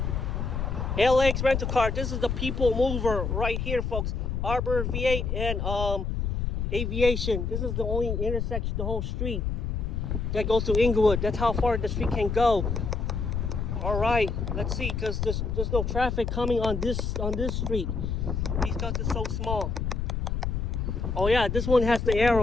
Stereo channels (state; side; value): noise; left; rumble, 1 dB below the sound